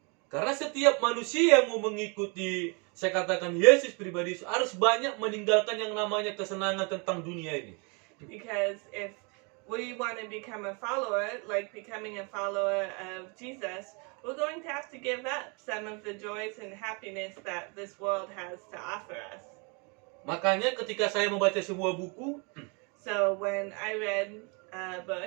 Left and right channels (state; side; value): quieter; left; 32.9 dB